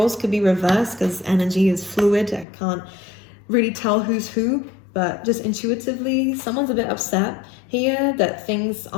could be reversed because energy is fluid. I can't really tell who's who, but just intuitively, someone's a bit upset here that things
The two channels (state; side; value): drops out; right; at 2.5 s